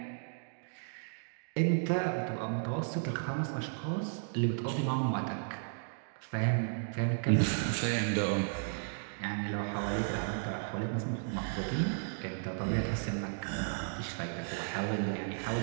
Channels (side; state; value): left; silent; digital silence